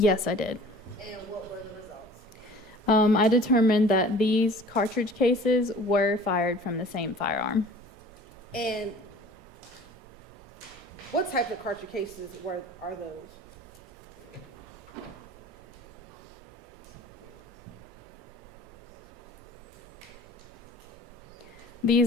I did. And what were the results? I determined that these cartridge cases were fired from the same firearm. And what type of cartridge cases are those?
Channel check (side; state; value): both; normal; correlation 0.46